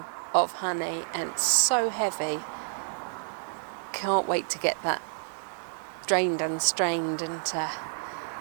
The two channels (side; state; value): left; silent; digital silence